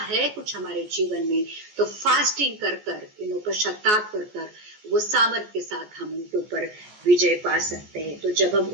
है कुछ हमारे जीवन में, तो फास्टिंग कर कर पश्चाताप कर कर वो सामर्थ के साथ हम उनके ऊपर विजय पा सकते हैं। तो जब हम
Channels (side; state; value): left; late; 14 ms